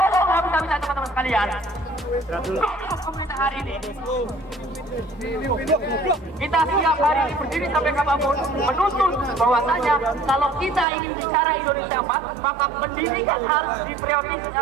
habis-habisan, teman-teman sekalian. Pemerintah hari ini kita siap hari ini berdiri sampai kapanpun menuntut bahwasanya kalau kita ingin bicara Indonesia emas, maka pendidikan harus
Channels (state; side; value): drops out; left; at 10.9 s